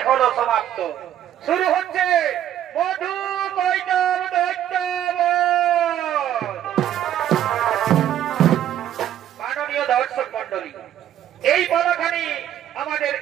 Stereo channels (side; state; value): left; quieter; 11.2 dB